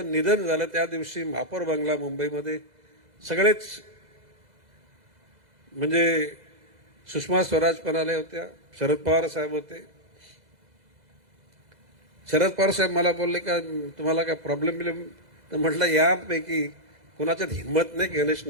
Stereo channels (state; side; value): late; left; 2.0 ms